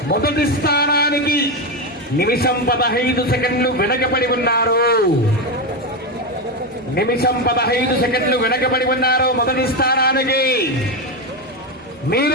మొదటి స్థానానికి నిమిషం 15 సెకండ్లు వెనకబడి ఉన్నారు. నిమిషం 15 సెకండ్లు వెనకబడి ఉన్నారు మొదటి స్థానానికి.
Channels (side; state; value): both; normal; correlation 0.11